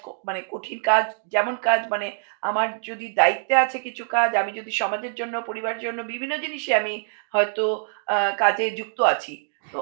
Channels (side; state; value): left; silent; digital silence